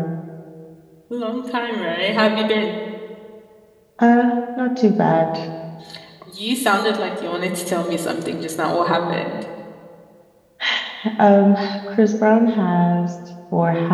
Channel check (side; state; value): both; identical; correlation 1.00